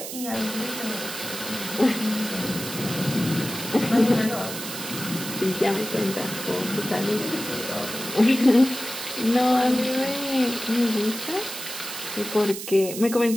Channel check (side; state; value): right; noise; hiss, 8 dB below the sound